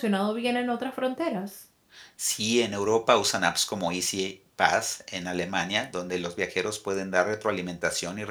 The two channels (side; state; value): both; identical; correlation 1.00